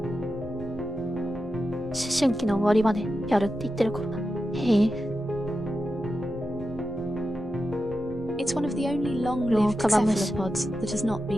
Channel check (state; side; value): normal; both; correlation 0.90